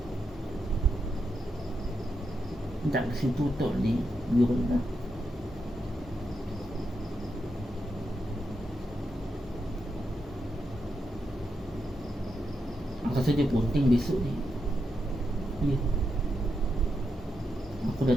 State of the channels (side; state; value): both; normal; correlation 0.84